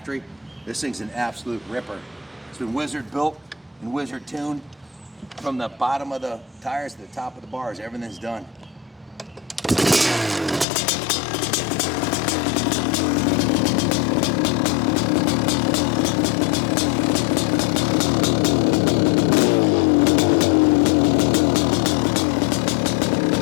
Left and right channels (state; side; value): drops out; right; at 10.7 s